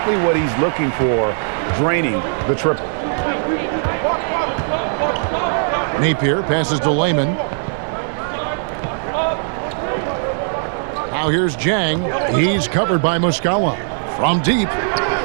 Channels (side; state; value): left; silent; digital silence